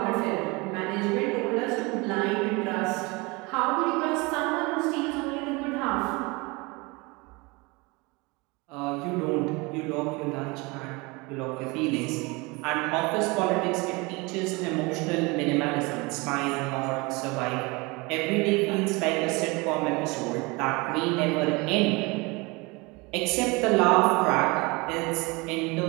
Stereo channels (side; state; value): left; quieter; 25.8 dB